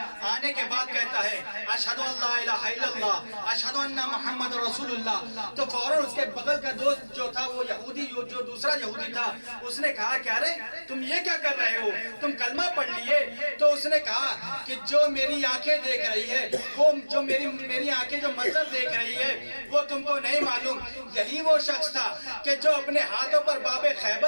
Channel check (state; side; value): inverted; both; correlation -1.00